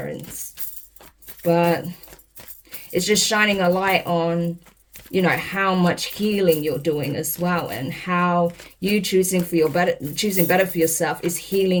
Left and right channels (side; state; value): both; identical; correlation 1.00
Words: But it's just shining a light on, you know, how much healing you're doing as well, and how you choosing better for yourself is